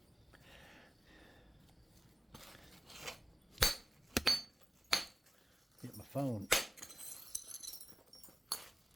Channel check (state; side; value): normal; both; correlation 0.95